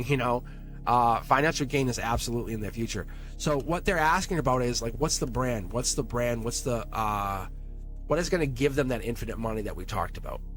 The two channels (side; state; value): both; identical; correlation 1.00